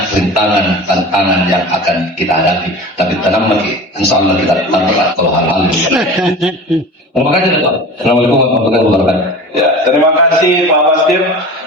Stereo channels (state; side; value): normal; both; correlation 0.36